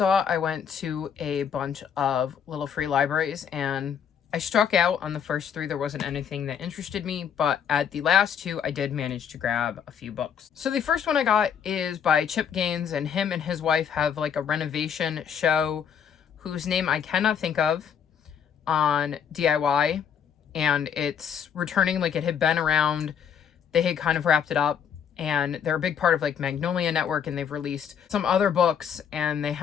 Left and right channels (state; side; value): quieter; right; 7.9 dB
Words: I went to a bunch of little free libraries, and I struck out on the first three. There wasn't anything that interested me, but at the last two, I did manage to grab a few books. So the first one I got is by Chip Gaines, and him and his wife have like a renovation show whose name I cannot think of on DIY, and it's returning. Like, it had been around, they had kind of wrapped it up, and they're a big part of like Magnolia Network, and they've released some other books, and they